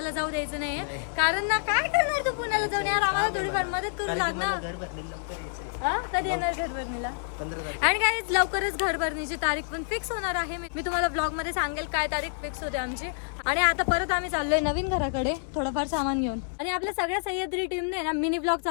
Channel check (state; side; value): silent; right; digital silence